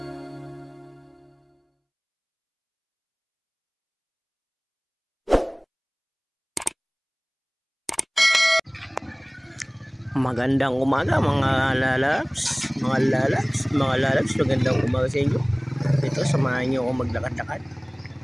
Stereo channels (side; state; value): both; identical; correlation 1.00